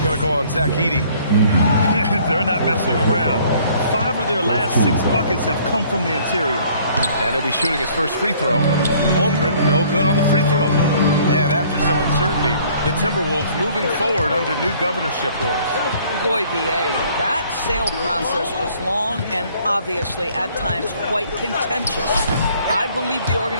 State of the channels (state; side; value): inverted; both; correlation -0.58